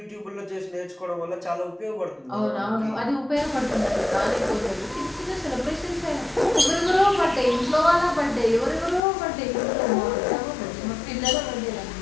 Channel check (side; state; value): right; drops out; at 9.0 s